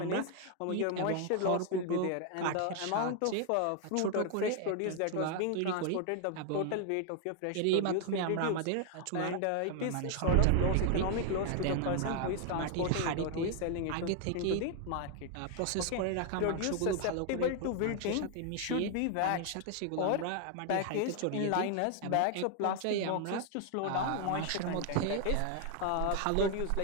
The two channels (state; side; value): different; both; correlation 0.00